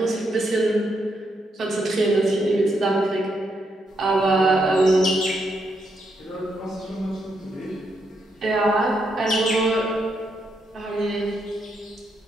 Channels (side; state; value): both; normal; correlation 0.79